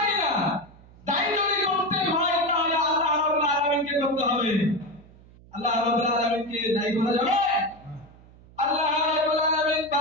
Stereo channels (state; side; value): noise; right; hum, 24 dB below the sound